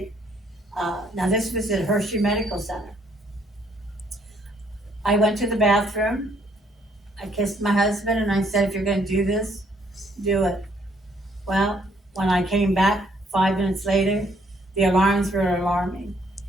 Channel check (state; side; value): normal; both; correlation 0.67